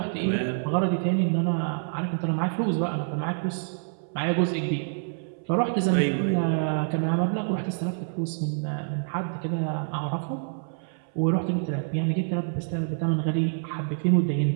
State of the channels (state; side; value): silent; left; 60 dB below the other